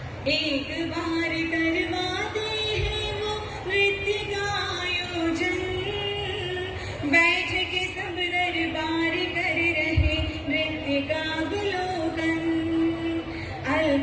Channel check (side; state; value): both; identical; correlation 1.00